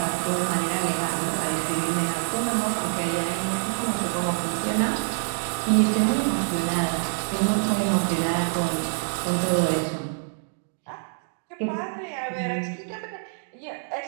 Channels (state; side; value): silent; left; digital silence